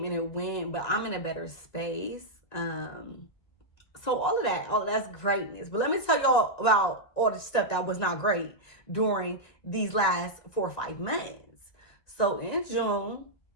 and it went, but I'm in a better space. So all of that's greatness. But let me tell y'all about all the stuff that was not great during these last 4 or 5 months. So in June,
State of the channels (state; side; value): late; right; 1.9 ms